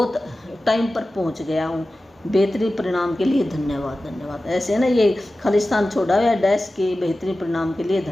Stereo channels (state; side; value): normal; both; correlation 0.95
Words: टाइम पर पहुंच गया हूँ, बेहतरीन परिणाम के लिए धन्यवाद धन्यवाद। ऐसे ना ये खालिस्तान छोड़ा हुआ डैश के बेहतरीन परिणाम के लिए